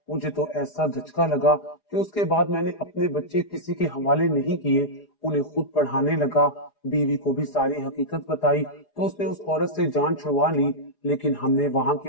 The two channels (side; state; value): right; late; 4.9 ms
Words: मुझे तो ऐसा धचका लगा कि उसके बाद मैंने अपने बच्चे किसी के हवाले नहीं किए, उन्हें खुद पढ़ाने लगा। बीवी को भी सारी हकीकत बताई तो उसने उस औरत से जान छुड़वा ली, लेकिन हमने वहां